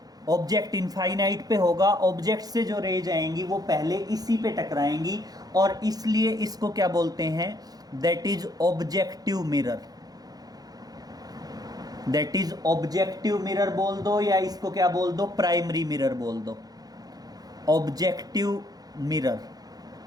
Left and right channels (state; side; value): late; left; 0.19 ms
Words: ऑब्जेक्ट इनफाइनाइट पे होगा, ऑब्जेक्ट से जो रेज आएंगी वो पहले इसी पे टकराएंगी और इसलिए इसको क्या बोलते हैं? That is objective mirror. That is objective mirror बोल दो या इसको क्या बोल दो? प्राइमरी मिरर बोल दो। ऑब्जेक्टिव मिरर